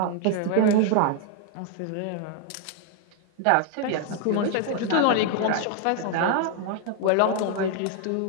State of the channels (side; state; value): both; different; correlation 0.00